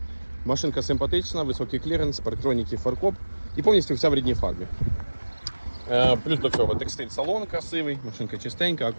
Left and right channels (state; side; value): inverted; both; correlation -1.00